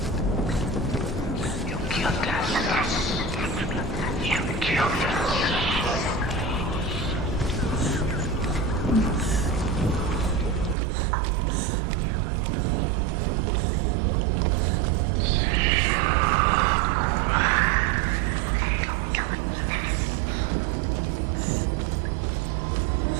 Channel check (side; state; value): left; drops out; at 10.8 s